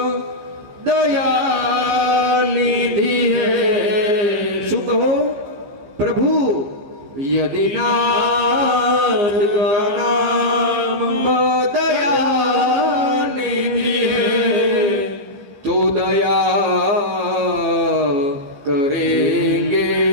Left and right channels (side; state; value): left; late; 15 ms